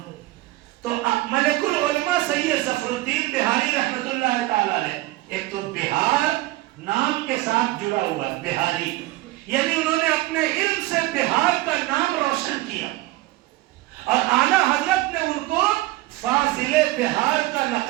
تو ملک العلماء سید ظفر الدین بہاری رحمت اللہ تعالی علیہ، ایک تو بہار نام کے ساتھ جڑا ہوا بہاری، یعنی انہوں نے اپنے علم سے بہار کا نام روشن کیا، اور اعلی حضرت نے ان کو فاضل بہار کا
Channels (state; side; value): quieter; left; 18.5 dB